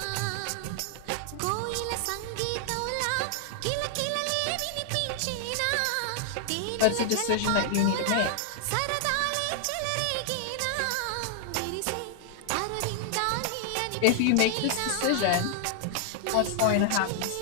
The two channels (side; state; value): both; different; correlation 0.00